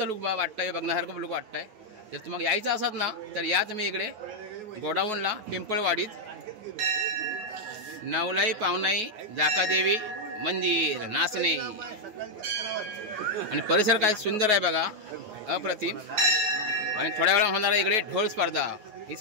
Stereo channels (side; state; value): left; late; 9.4 ms